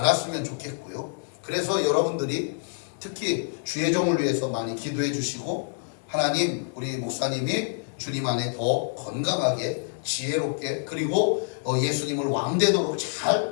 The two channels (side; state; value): right; silent; digital silence